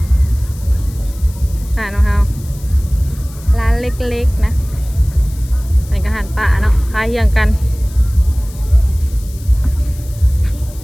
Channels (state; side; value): noise; left; hiss, 21 dB below the sound